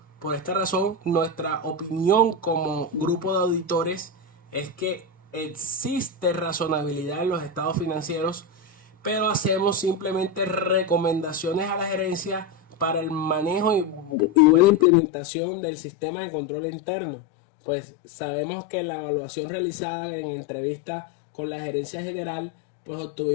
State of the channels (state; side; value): drops out; right; at 14.9 s